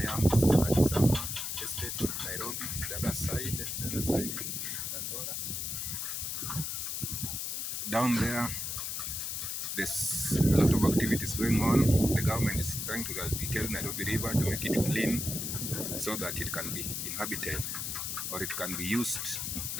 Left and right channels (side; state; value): left; noise; hiss, 3 dB below the sound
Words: am is like some estate, Nairobi. The other side is Dandora. Down there's a lot of activities going on. The government is trying to rehabilitate Nairobi River to make it clean so that it can be inhabited, or it can be used,